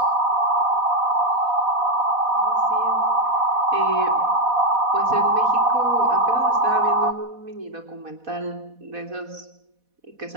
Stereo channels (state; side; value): late; left; 4.1 ms